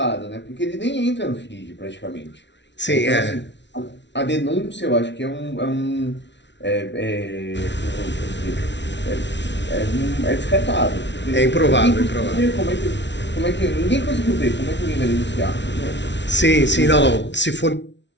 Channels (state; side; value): late; right; 0.51 ms